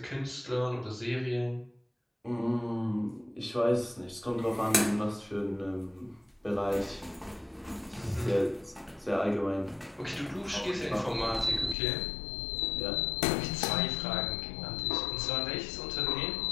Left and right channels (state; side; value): drops out; right; at 11.8 s